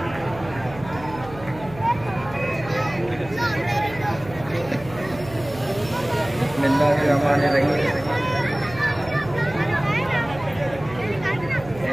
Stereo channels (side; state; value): right; noise; hum, 16 dB below the sound